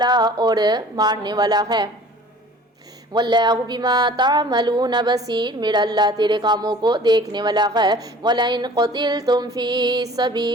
اور مارنے والا ہے۔ واللہ بما تعملون بصیر، میرا اللہ تیرے کاموں کو دیکھنے والا ہے۔ وَلَئِن قُتِلْتُمْ فِي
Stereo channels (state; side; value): normal; both; correlation 0.48